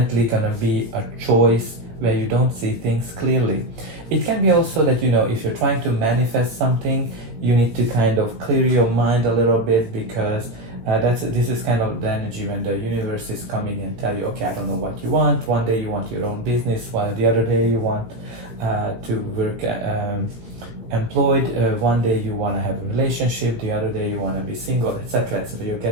gonna be a choice where you don't see things clearly. It can be also that, you know, if you're trying to manifest something, you need to kind of clear your mind a little bit, because this is kind of the energy when the universe is coming and tell you, okay, I don't know what you want. One day you want your own business, while the other day you want to work employed. One day you want to have a relationship, the other day you want to be single, etc. So you're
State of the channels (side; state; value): left; late; 18 ms